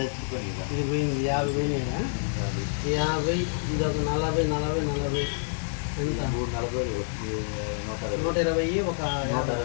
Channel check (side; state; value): right; silent; digital silence